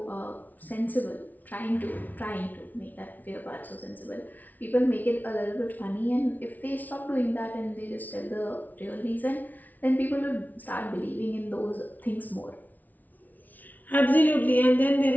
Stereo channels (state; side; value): late; right; 0.079 ms